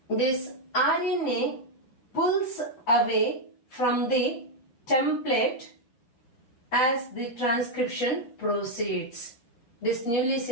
this RNA pulls away from the template as the transcription proceeds. This newly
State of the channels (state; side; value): late; right; 7.7 ms